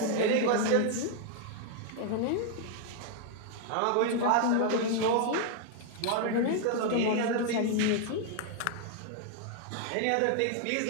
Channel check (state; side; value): different; both; correlation 0.00